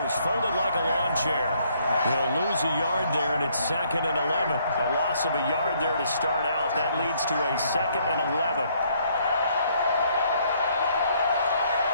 folded like a lawn chair. He'll lose a yard there, and it's 2nd and 11. A loss of a yard there to start out. That leads to a 2nd and 11.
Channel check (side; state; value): both; inverted; correlation -0.67